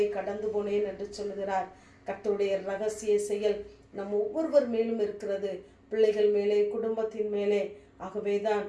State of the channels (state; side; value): identical; both; correlation 1.00